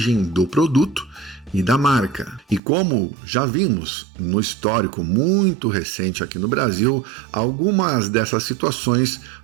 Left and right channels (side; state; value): left; drops out; at 2.6 s